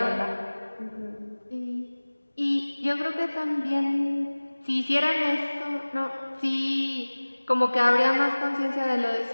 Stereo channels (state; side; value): inverted; both; correlation -1.00